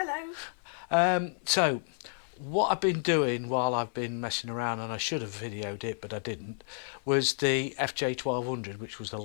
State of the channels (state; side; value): silent; right; 55 dB below the other